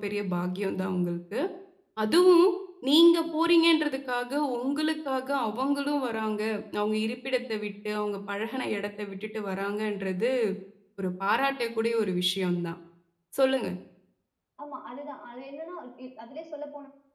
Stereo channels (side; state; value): both; identical; correlation 1.00